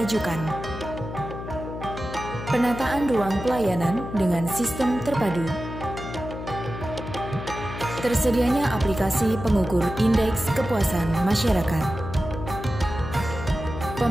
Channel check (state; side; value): noise; left; hum, 9 dB below the sound